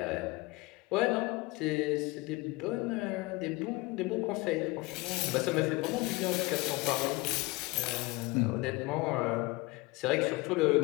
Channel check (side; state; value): right; quieter; 23.4 dB